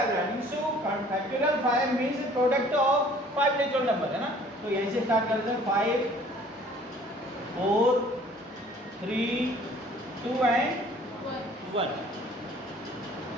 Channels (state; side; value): normal; both; correlation 0.53